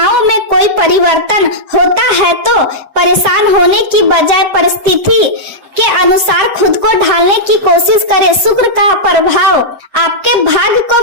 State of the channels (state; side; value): late; left; 7.8 ms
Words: में कोई परिवर्तन होता है तो परेशान होने की बजाय परिस्थिति के अनुसार खुद को ढालने की कोशिश करें। शुक्र का प्रभाव आपके भाग्य को